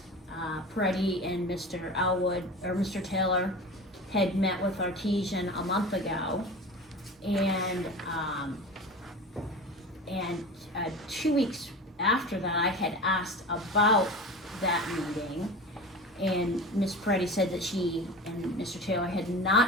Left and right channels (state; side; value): normal; both; correlation 0.33